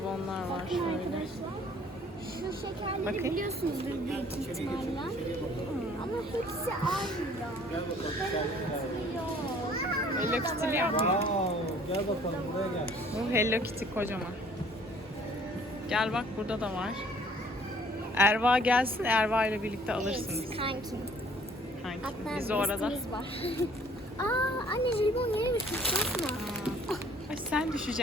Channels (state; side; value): normal; both; correlation 0.56